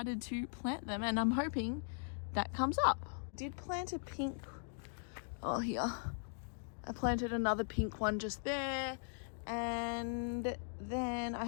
to plant them, and I'm hoping that comes up. Did plant a pink, oh here, I planted another pink one just there, and then I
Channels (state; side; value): silent; right; digital silence